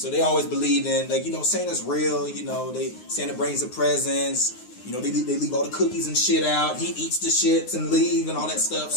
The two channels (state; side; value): late; right; 9.6 ms